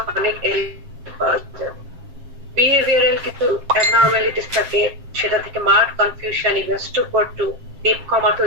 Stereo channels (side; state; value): left; late; 7.5 ms